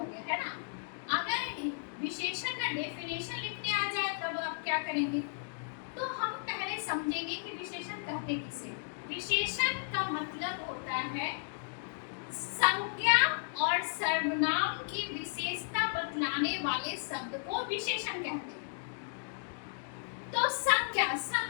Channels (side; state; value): right; silent; digital silence